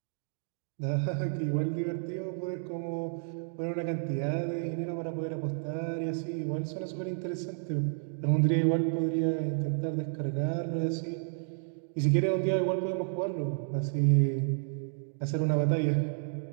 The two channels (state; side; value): silent; left; digital silence